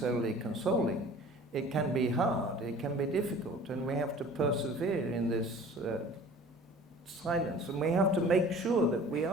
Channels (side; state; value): both; normal; correlation 0.46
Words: consoling. It can be hard, it can be difficult, and we have to persevere in this silence, and we have to make sure that we